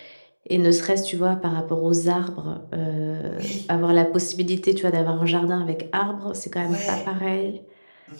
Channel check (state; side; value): inverted; both; correlation -1.00